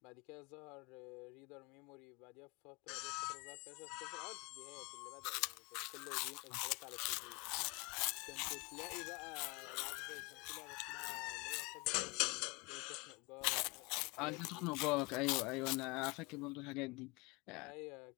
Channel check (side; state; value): right; quieter; 26.9 dB